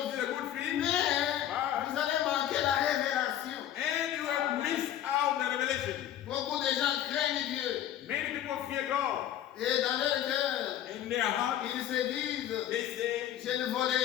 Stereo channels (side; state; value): right; quieter; 11.5 dB